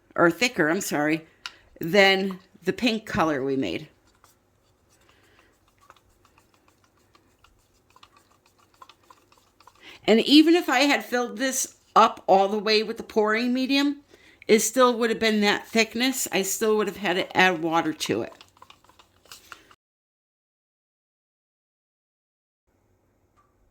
or thicker, I'm sorry, than the pink color we made. And even if I had filled this up all the way with the pouring medium, it still would have been that thickness. I still would have had to add water to it.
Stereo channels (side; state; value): both; identical; correlation 1.00